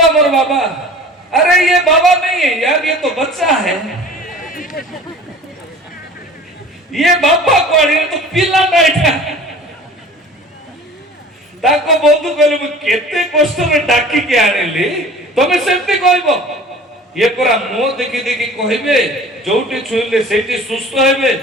हमर बाबा अरे ये बाबा नहीं है यार ये तो बच्चा है ये बाबा कोण ये तो पिला नाइटा ताको बंधु कहले मु केते कष्ट में डाकी के आनेली तमे सेमते कहबो ये परा मो देखि देखि कहबे जोटी छुइले सेठी सुस्त हेबे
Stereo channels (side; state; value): both; normal; correlation 0.44